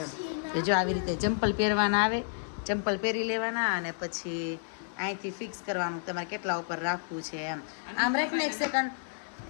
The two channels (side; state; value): right; silent; 57 dB below the other